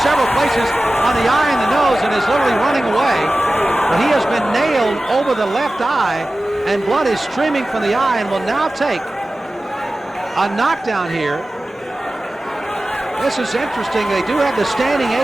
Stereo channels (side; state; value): both; normal; correlation 0.96